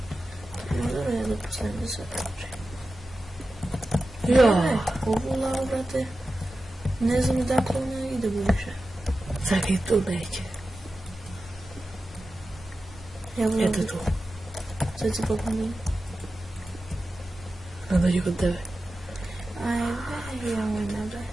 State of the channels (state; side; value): normal; both; correlation 0.93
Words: Možda ja da postavim da sve kaže. Ja. Ovu lavu, brate. Ne znam dakle ona ide buduće. Čekaj, tu neće. Eto tu. Sad si popomnim. Ne dođi kod tebe. Ajde, ja moj nabaj.